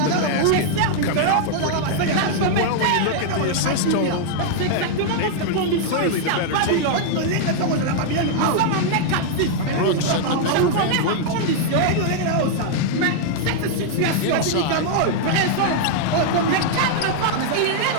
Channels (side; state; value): both; different; correlation -0.01